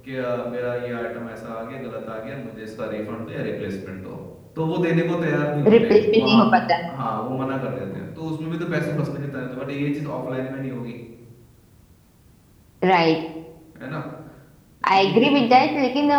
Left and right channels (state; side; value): identical; both; correlation 1.00